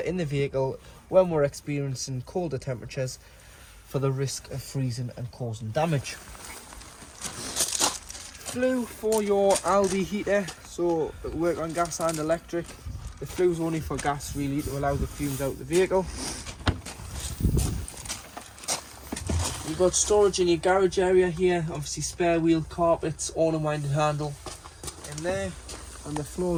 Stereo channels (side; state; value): both; identical; correlation 1.00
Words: the vehicle when we're experiencing colder temperatures, for the risk of freezing and causing damage. Flue for your Aldi heater, so it'll work on gas and electric. The flue's only for gas really, to allow the fumes out of the vehicle. You've got storage in your garage area here, obviously spare wheel carpets, all unwinding handle in there, and the